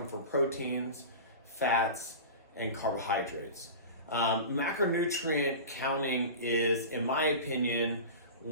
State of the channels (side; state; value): both; inverted; correlation -0.31